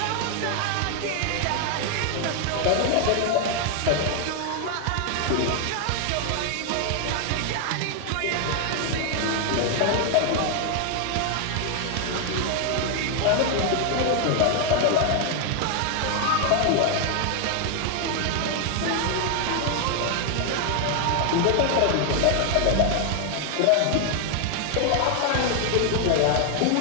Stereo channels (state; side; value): different; both; correlation 0.00